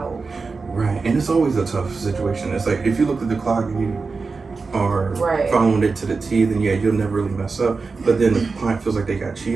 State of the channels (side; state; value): left; quieter; 4.4 dB